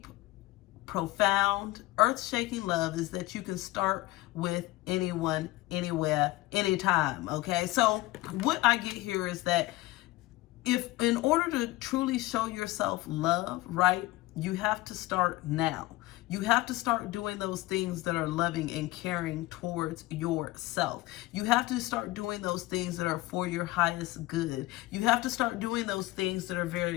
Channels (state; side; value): quieter; right; 18.9 dB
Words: profound, earth-shaking love is that you can start with anyone, anywhere, anytime, okay? So what I get here is that if in order to truly show yourself love, right, you have to start now. You have to start doing those things that are loving and caring towards yourself. You have to start doing those things that are for your highest good. You have to start doing those things that are